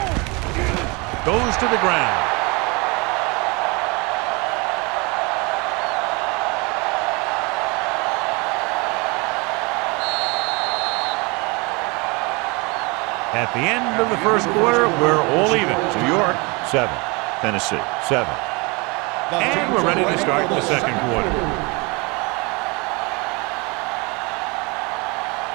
Goes to the ground. At the end of the 1st quarter, we're all even. New York, 7. Tennessee, 7. And we're ready to start the 2nd quarter.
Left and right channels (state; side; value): quieter; left; 28.0 dB